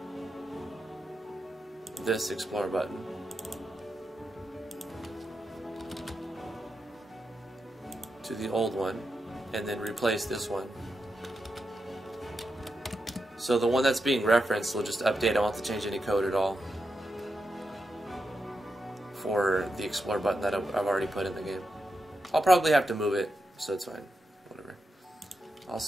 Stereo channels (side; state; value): both; normal; correlation 0.87